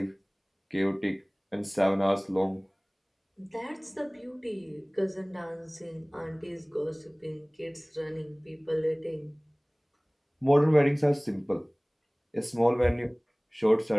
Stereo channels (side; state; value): both; identical; correlation 1.00